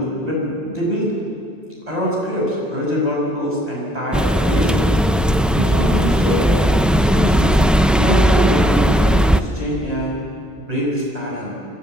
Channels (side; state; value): both; normal; correlation 0.69